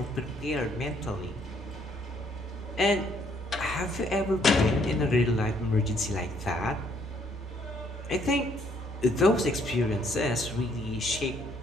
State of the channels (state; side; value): normal; both; correlation 0.67